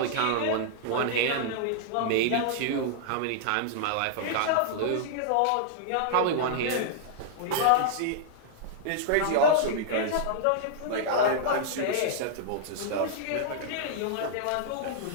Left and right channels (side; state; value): both; different; correlation -0.01